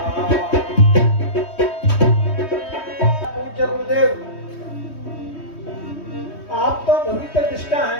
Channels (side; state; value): right; late; 3.2 ms